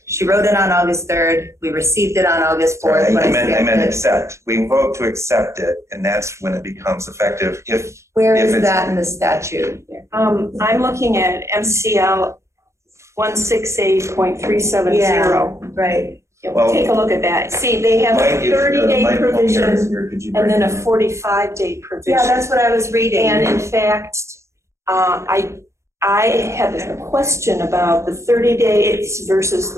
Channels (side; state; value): left; late; 0.14 ms